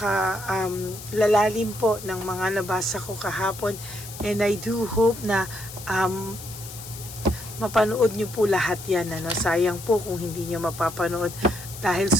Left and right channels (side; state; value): left; noise; hiss, 13 dB below the sound